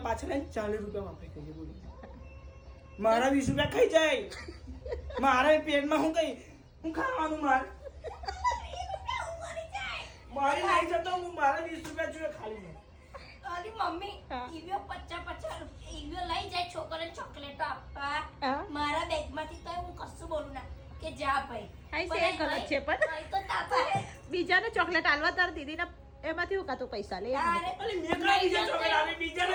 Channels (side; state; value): both; identical; correlation 1.00